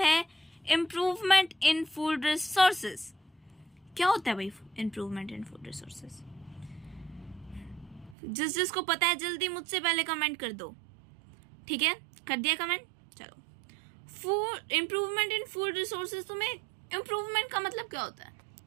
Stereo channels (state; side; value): drops out; left; at 8.2 s